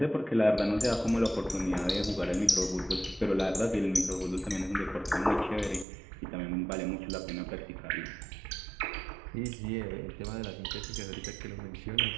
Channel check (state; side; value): drops out; left; at 5.9 s